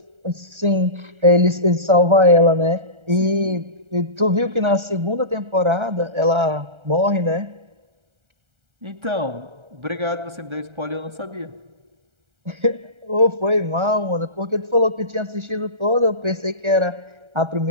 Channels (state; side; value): late; left; 1.3 ms